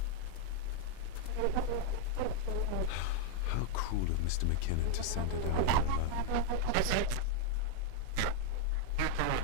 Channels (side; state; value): both; different; correlation 0.01